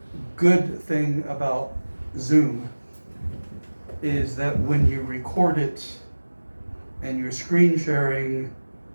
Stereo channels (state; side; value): inverted; both; correlation -1.00